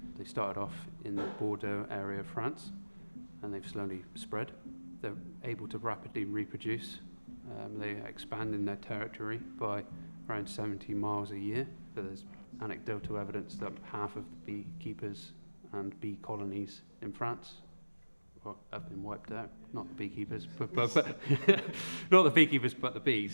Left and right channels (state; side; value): inverted; both; correlation -1.00